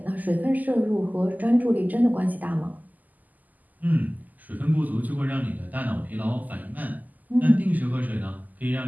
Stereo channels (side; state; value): left; late; 0.081 ms